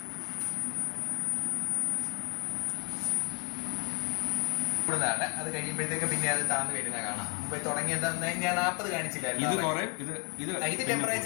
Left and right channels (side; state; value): right; quieter; 34.4 dB